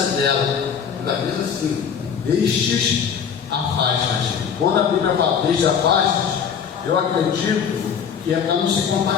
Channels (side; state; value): right; quieter; 7.3 dB